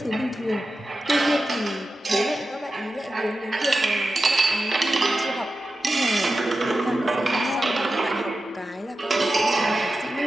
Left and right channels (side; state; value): both; normal; correlation 0.92